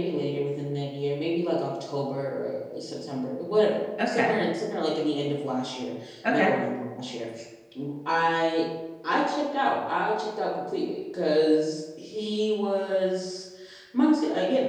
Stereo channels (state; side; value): identical; both; correlation 1.00